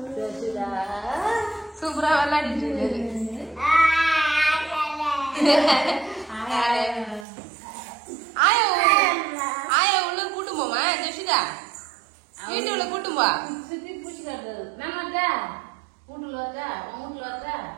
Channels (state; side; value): drops out; left; at 7.2 s